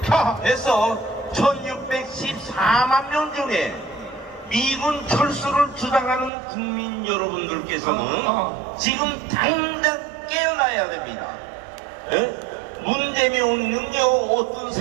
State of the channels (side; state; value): left; drops out; at 6.3 s